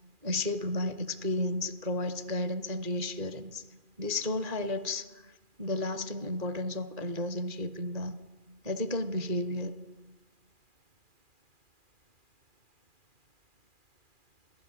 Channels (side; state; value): left; late; 2.4 ms